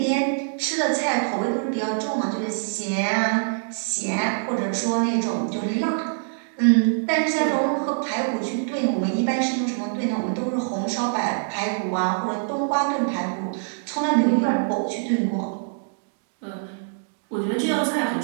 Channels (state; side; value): silent; left; digital silence